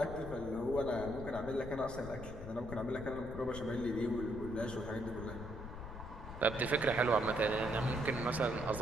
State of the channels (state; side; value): noise; left; rumble, 10 dB below the sound